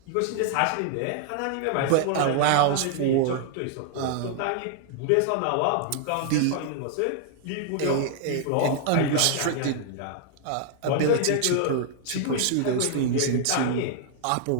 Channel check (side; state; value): both; different; correlation 0.00